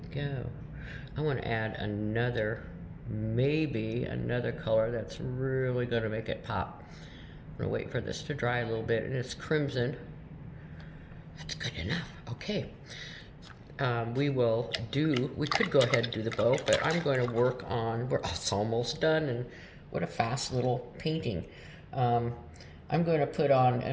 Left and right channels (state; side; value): identical; both; correlation 1.00